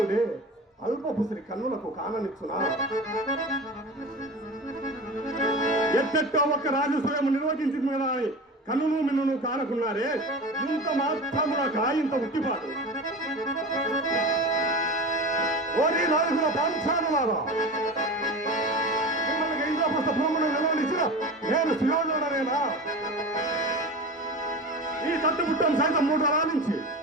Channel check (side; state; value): both; normal; correlation 0.31